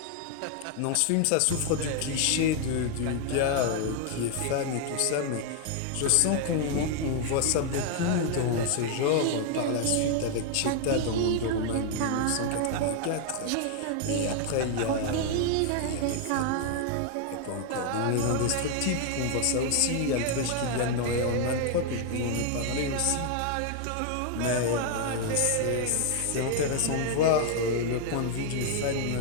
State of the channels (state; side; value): different; both; correlation 0.00